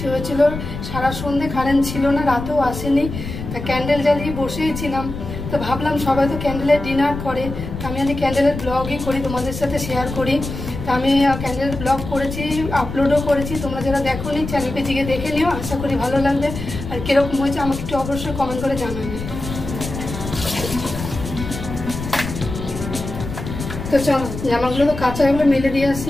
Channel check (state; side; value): noise; left; rumble, 8 dB below the sound